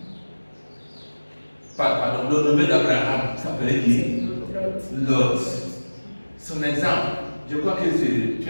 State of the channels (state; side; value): inverted; both; correlation -1.00